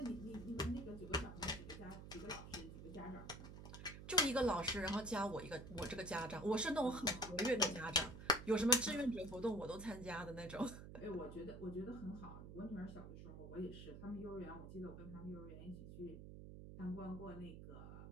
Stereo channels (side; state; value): right; noise; hum, 11 dB below the sound